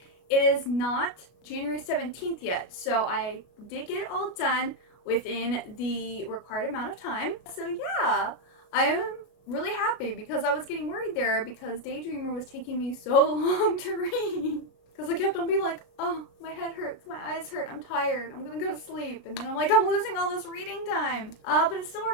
It is not January 17th yet, so I did get it all done within the required amount of time. So yeah, I am really happy because I was getting worried there because Daydreamer was taking me so long to read. Because I kept on being like, oh, my head hurts, my eyes hurt, I'm tired, I'm gonna go to sleep. And then I'm like, I'm losing all this reading time. But it still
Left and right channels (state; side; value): late; right; 33 ms